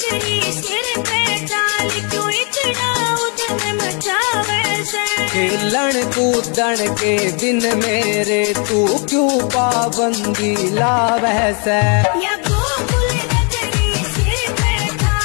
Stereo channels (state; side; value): quieter; right; 36.6 dB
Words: सिर पे डाल क्यों इतना उधम मचावे से। खेलन कूदन के दिन मेरे तू क्यों पाबंदी ला वैसे। या गोकुल नगरी सिर पे